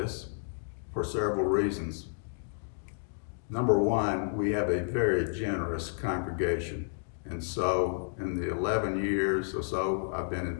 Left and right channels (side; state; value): right; silent; digital silence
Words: for several reasons. Number one, we have a very generous congregation. And so in the 11 years or so I've been